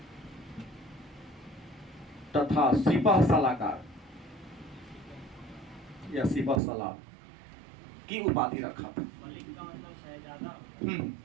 तथा सिपह सलाहकार या सिपह सलार की उपाधि रखा था।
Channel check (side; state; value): left; drops out; at 6.6 s